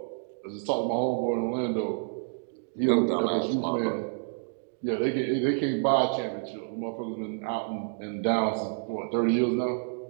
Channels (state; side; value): silent; left; digital silence